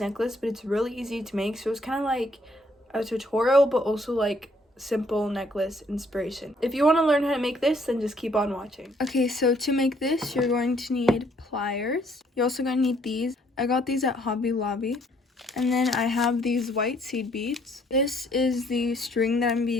but it's really easy to make. So it's kind of like a tutorial, but also like simple necklace inspiration. If you want to learn how to make this, then just keep on watching. Okay, so to make this, you're going to need pliers. You're also going to need these. I got these at Hobby Lobby. And then I have these white seed beads. This is the string that I'm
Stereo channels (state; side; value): normal; both; correlation 0.66